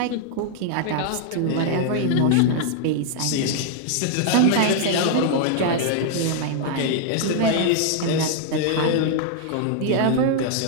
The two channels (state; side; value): different; both; correlation -0.01